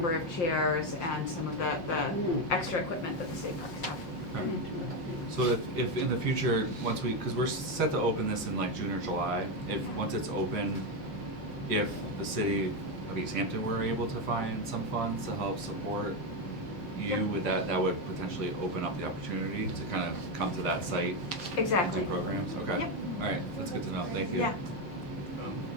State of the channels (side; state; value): right; late; 5.4 ms